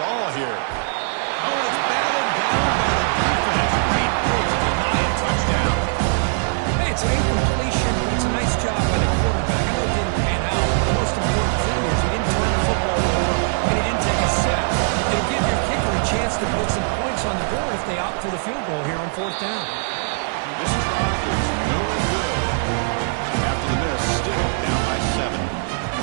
all here. Oh, and it's batted down by the defense. Great move to deny a touchdown. Hey, it's an incompletion, but it's a nice job by the quarterback. I know it didn't pan out. The most important thing is he didn't turn the football over, and he didn't take a sack. It'll give your kicker a chance to put some points on the board if they opt for the field goal here on fourth down. This try is no good. After the miss, still down by 7.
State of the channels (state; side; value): silent; left; 56 dB below the other